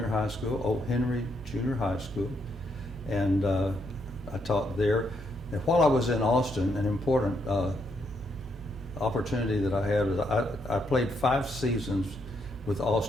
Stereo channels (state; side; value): normal; both; correlation 0.76